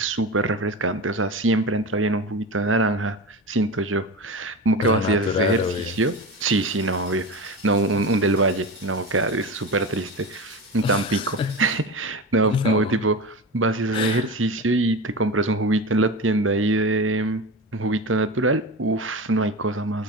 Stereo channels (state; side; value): normal; both; correlation 0.25